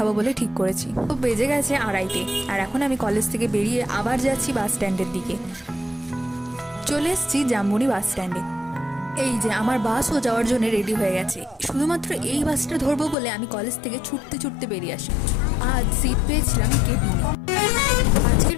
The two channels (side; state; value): right; drops out; at 13.2 s